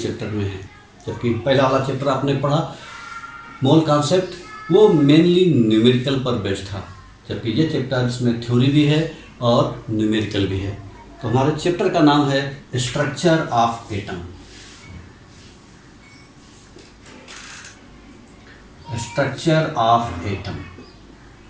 में है। जबकि पहला वाला चैप्टर आपने पढ़ा मोल कॉन्सेप्ट, वो मेनली न्यूमेरिकल पर बेस्ड था, जबकि ये चैप्टर इसमें थ्योरी भी है और न्यूमेरिकल भी है। तो हमारे चैप्टर का नाम है structure of atom. Structure of atom,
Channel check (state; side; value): identical; both; correlation 1.00